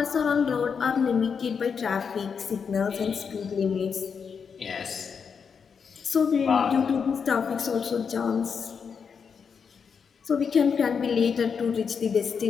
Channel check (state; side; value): quieter; right; 6.3 dB